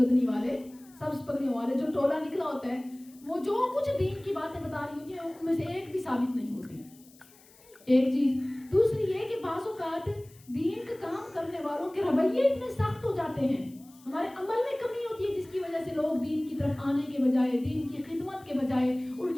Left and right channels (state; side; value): noise; left; hiss, 26 dB below the sound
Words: والے، سبز پگڑیوں والے جو ٹولہ نکلا ہوتا ہے، وہ جو کچھ دین کی باتیں بتا رہی ہوتی ہیں ان میں سے ایک بھی ثابت نہیں ہوتی. ایک چیز. دوسری یہ کہ بعض اوقات دین کا کام کرنے والوں کے رویے اتنے سخت ہو جاتے ہیں، ہمارے عمل میں کمی ہوتی ہے، جس کی وجہ سے لوگ دین کی طرف آنے کے بجائے، دین کی خدمت کے بجائے